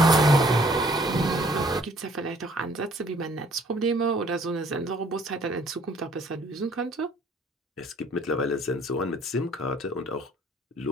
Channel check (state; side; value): normal; both; correlation 0.59